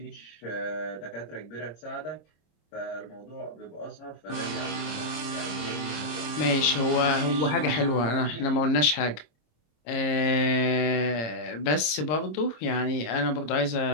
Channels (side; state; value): right; late; 26 ms